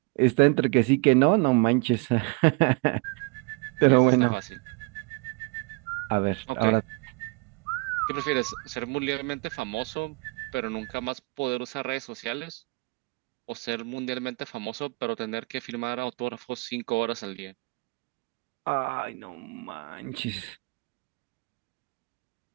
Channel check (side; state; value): left; quieter; 29.3 dB